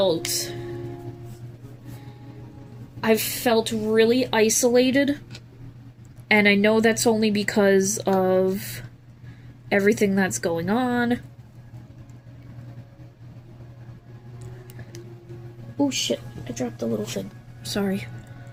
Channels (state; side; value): identical; both; correlation 1.00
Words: really isolated, and I know that's only because of everything that's going on. Oh shit, I dropped the little thing. Sorry.